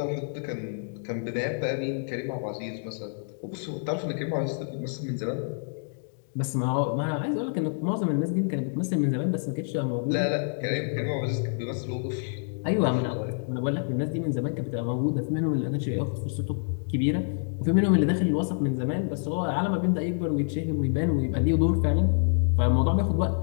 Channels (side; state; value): right; silent; digital silence